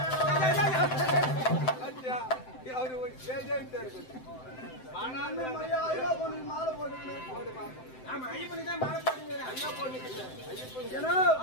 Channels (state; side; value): late; right; 7.8 ms